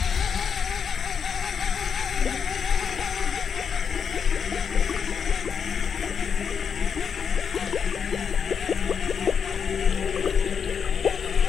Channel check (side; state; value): right; quieter; 6.8 dB